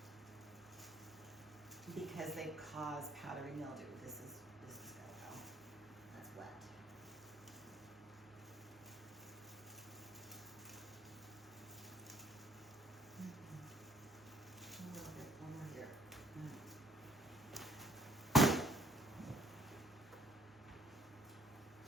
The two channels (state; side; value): normal; both; correlation 0.59